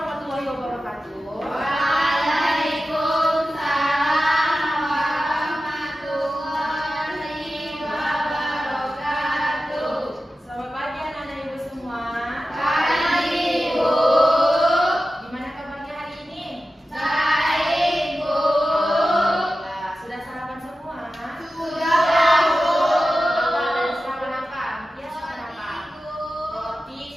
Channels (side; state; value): both; normal; correlation 0.94